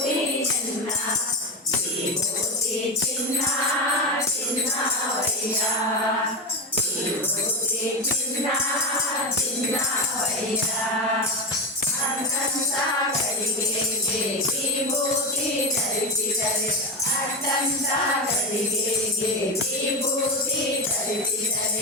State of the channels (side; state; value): both; normal; correlation 0.17